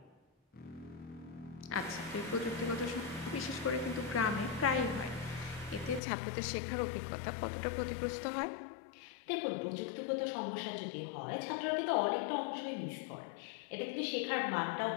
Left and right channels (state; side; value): drops out; right; at 6.0 s